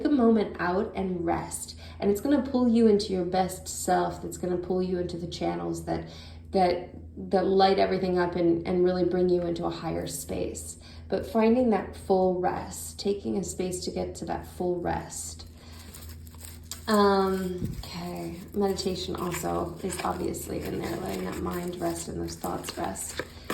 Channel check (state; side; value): identical; both; correlation 1.00